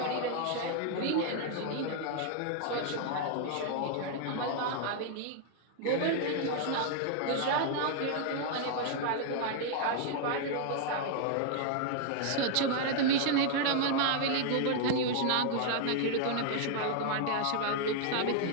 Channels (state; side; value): different; both; correlation 0.00